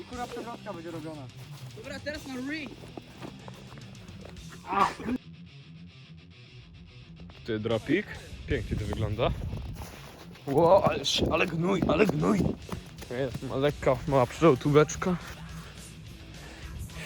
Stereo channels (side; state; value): both; identical; correlation 1.00